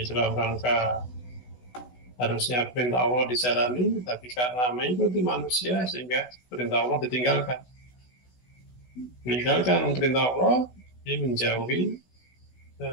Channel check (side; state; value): right; late; 16 ms